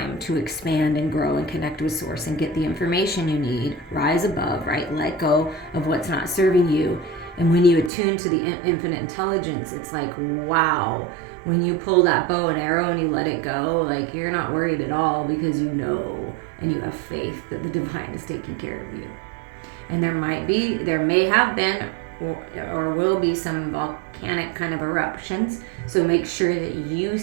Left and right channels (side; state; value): left; drops out; at 7.9 s